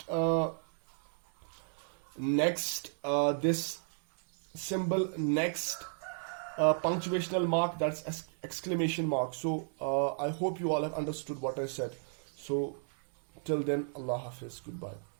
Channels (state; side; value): silent; left; digital silence